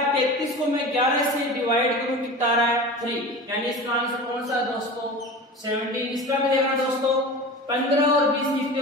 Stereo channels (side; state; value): both; normal; correlation 0.33